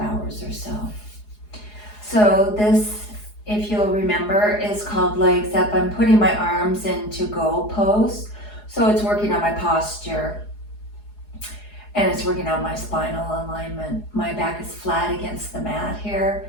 or so. So this, if you'll remember, is called legs up. I'm putting my arms into goal pose. So it's working on my posture and it's working on my spinal alignment. My back is flat against the mat here,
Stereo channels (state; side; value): late; right; 4.8 ms